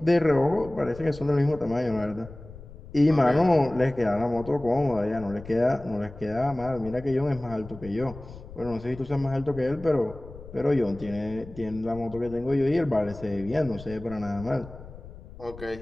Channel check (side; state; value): left; noise; rumble, 16 dB below the sound